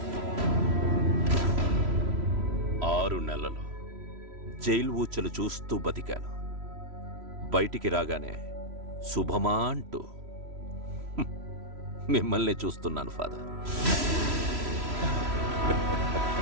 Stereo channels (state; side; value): late; left; 3.1 ms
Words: 6 నెలలు జైలు ఊచలు చూస్తూ బతికాను. బయటికి రాగానే శుభమా అంటూ మిమ్మల్ని చూస్తున్నాను ఫాదర్.